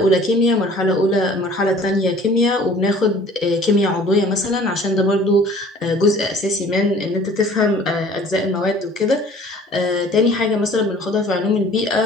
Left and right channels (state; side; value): normal; both; correlation 0.50